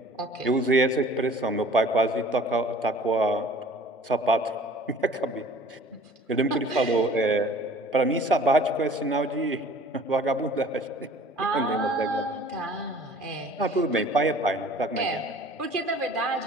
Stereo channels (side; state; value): both; normal; correlation 0.50